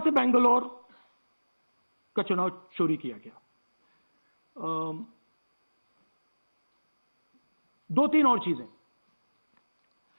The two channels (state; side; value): inverted; both; correlation -1.00